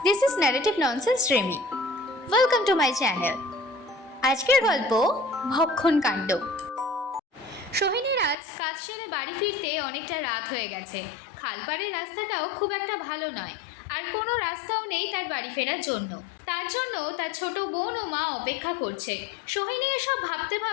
this is Narrative Nonsense Remy. Welcome to my channel. আজকের গল্প ভক্ষণ কাণ্ড। সোহিনীর আজ কাজ সেরে বাড়ি ফিরতে অনেকটা রাত হয়ে গেছে। খালপাড়ের রাস্তাটাও খুব একটা ভালো নয়, আর কোনো রাস্তাও নেই তার বাড়ি ফেরার জন্য। তার জন্য তার ছোট বোন ও মা অপেক্ষা করছে। সোহিনী এসব ভাবতে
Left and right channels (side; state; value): right; drops out; at 8.3 s